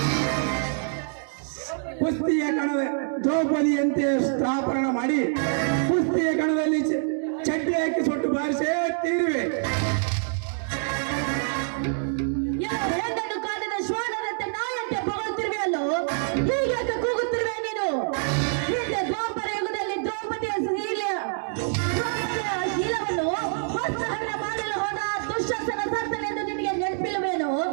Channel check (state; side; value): silent; left; digital silence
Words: ಕುಸ್ತಿಯ ಕಣದ ದ್ರೌಪದಿಯಂತೆ ಸ್ಥಾಪನ ಮಾಡಿ ಕುಸ್ತಿಯ ಕಣದಲ್ಲಿ ಚಡ್ಡಿ ಹಾಕಿ ಸೊಟ್ಟು ಬಾರಿಸೇ ತೀರುವೆ. ಹೆಣ್ಣನ್ನು ಕಾಡಿದ ಶ್ವಾನದಂತೆ ನಾಯಂತೆ ಹೊಗಳುತ್ತಿರುವೆ ಅಲ್ಲೋ. ಹೀಗೆ ಕೂಗುತ್ತಿರುವೆ ನೀನು. ಹಿಂದೆ ದ್ವಾಪರ ಯುಗದಲ್ಲಿ ದ್ರೌಪದಿಯ ಶೀಲವನ್ನು ವಸ್ತ್ರಹರಣ ಮಾಡಲು ಹೋದ ದುಶ್ಶಾಸನ ಸತ್ತನೆಂದು ನಿನಗೆ ನೆನಪಿಲ್ಲವೇನು?